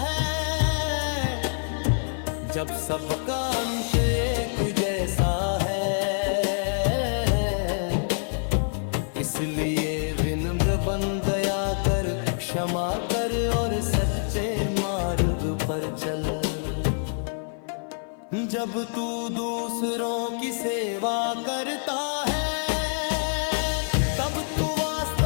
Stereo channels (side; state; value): right; silent; 55 dB below the other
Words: जब सबका अंत एक जैसा है। इसलिए विनम्र बन दया कर, क्षमा कर और सच्चे मार्ग पर चल। जब तू दूसरों की सेवा करता है, तब तू